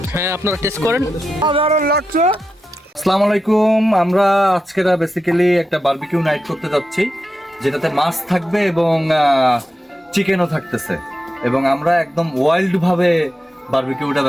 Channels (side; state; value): both; normal; correlation 0.89